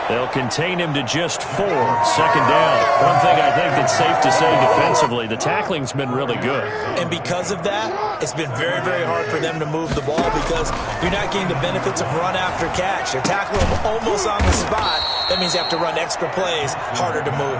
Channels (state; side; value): identical; both; correlation 1.00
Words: They'll contain him to just 4. Second down. One thing I think that's safe to say defensively, the tackling's been really good. And because of that, it's been very, very hard for them to move the ball because you're not getting the benefits of run after catch. They're tackling him almost on the spot. That means you have to run extra plays, harder to move